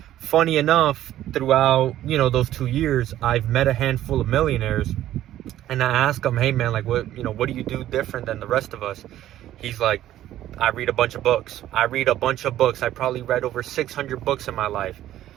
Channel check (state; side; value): quieter; left; 13.0 dB